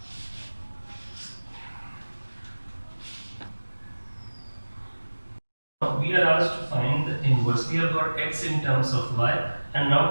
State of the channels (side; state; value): both; inverted; correlation -1.00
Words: We are asked to find the inverse. We have got x in terms of y, and